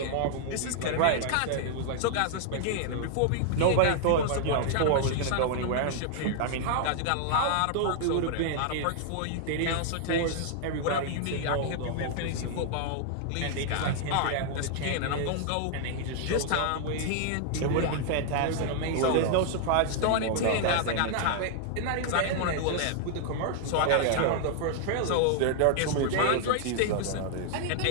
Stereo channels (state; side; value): different; both; correlation -0.01